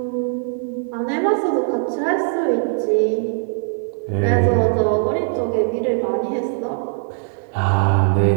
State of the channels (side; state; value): left; silent; digital silence